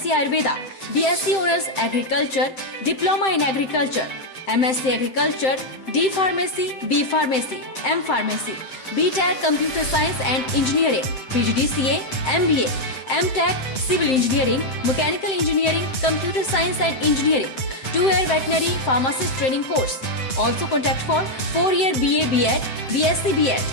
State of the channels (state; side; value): late; right; 7.7 ms